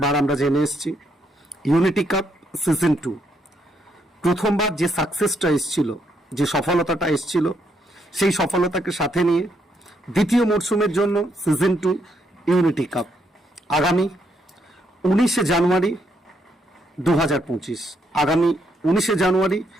আমরা জেনে এসেছি। ইউনিটি কাপ সিজন 2 প্রথমবার যে সাকসেসটা এসেছিল, যে সফলতাটা এসেছিল, সেই সফলতাকে সাথে নিয়ে দ্বিতীয় মরশুমের জন্য সিজন 2 ইউনিটি কাপ আগামী 19শে জানুয়ারি 2025 আগামী 19শে জানুয়ারি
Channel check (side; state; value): both; normal; correlation 0.75